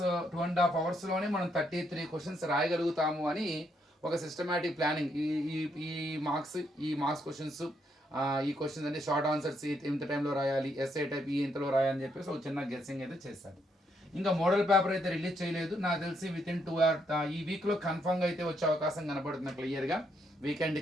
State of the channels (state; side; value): normal; both; correlation 0.75